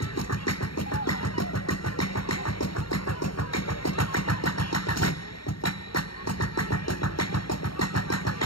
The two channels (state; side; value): late; right; 0.73 ms